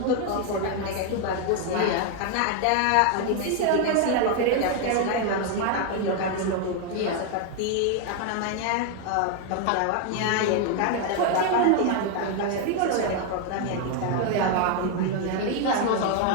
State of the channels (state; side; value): different; both; correlation 0.00